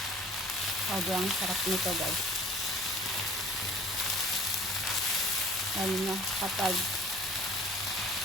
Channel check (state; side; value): normal; both; correlation 0.48